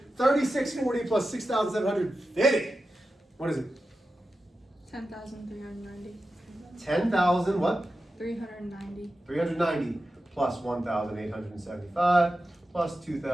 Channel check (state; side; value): normal; both; correlation 0.92